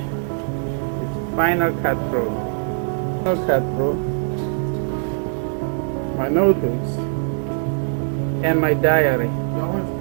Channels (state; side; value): silent; left; digital silence